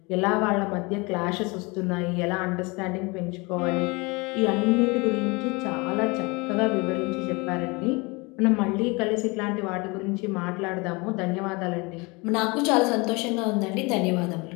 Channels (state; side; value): quieter; right; 26.7 dB